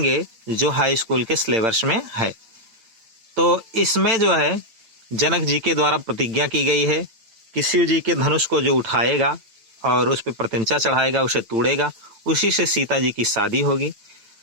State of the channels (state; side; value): late; left; 8.9 ms